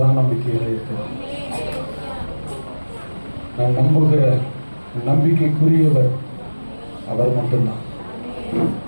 நம்பிக்கையில இருக்கிறார். நான் நம்புகிற நம்பிக்கைக்குரியவர் அவர் மட்டும்தான்.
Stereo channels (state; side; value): inverted; both; correlation -1.00